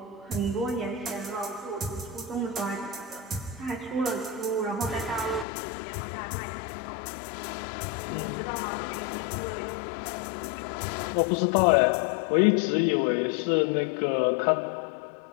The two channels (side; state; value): right; drops out; at 5.5 s